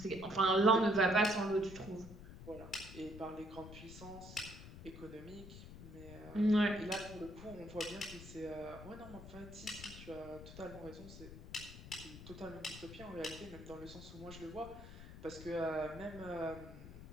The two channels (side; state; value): left; noise; rumble, 14 dB below the sound